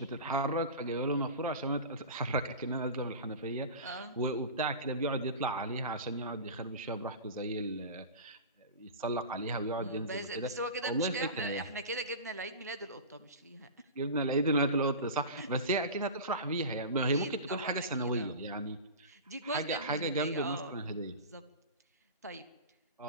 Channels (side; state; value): both; inverted; correlation -0.31